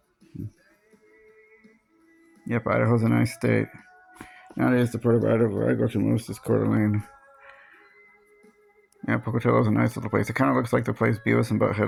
Yep, Idaho's a nice state. Nowadays, the part of Idaho where I go to most is Coeur d'Alene. Yeah, Pocatello's a nice little place. It kind of looks like the place Beavis and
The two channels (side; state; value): both; identical; correlation 1.00